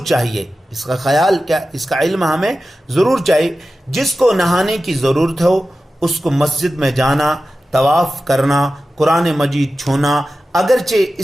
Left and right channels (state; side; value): normal; both; correlation 0.94